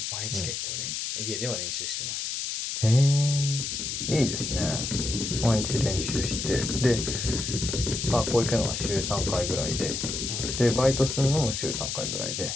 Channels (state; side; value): noise; left; hiss, 3 dB below the sound